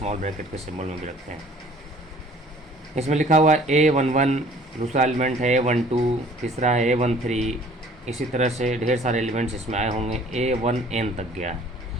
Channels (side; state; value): both; normal; correlation 0.53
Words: ब्रैकेट के सिम्बल में भी रखते हैं। इसमें लिखा हुआ है A11, दूसरा एलिमेंट है A12, तीसरा है A13। इसी तरह से ढेर सारे एलिमेंट्स इसमें आए होंगे, A1n तक गया है।